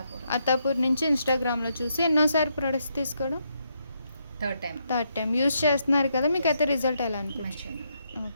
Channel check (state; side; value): inverted; both; correlation -0.78